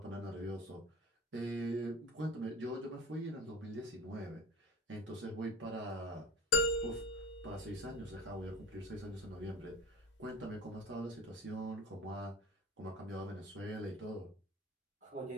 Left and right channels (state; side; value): normal; both; correlation 0.35